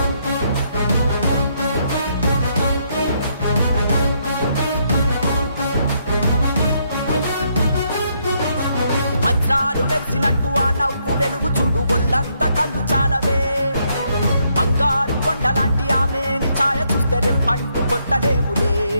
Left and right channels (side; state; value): both; inverted; correlation -0.74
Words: వజ్రాలు వెలిసినట్టు ఆ నవ్వు వెలుగు చూడు, ఒళ్ళంత కళ్ళు చాలవే. బంగారు కొండలాంటి ఆమెని ఛాయ చూస్తే రెప్పంటూ కొట్టలేములే.